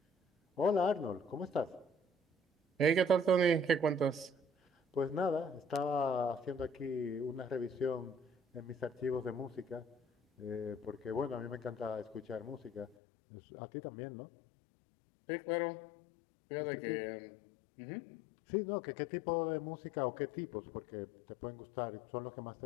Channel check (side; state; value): right; drops out; at 13.0 s